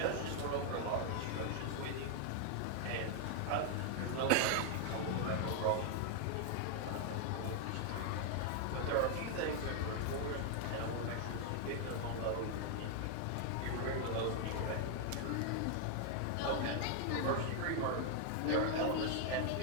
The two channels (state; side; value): different; both; correlation 0.00